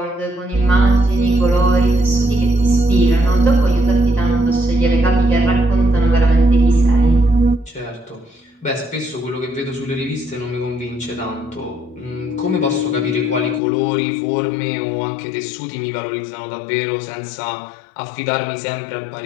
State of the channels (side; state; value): right; drops out; at 13.6 s